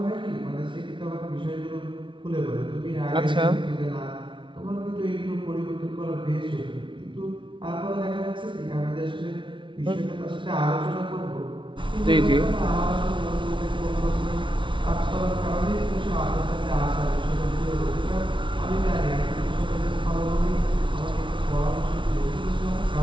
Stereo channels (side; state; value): left; late; 0.24 ms